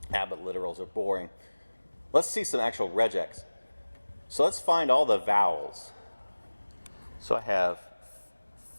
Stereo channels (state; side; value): inverted; both; correlation -1.00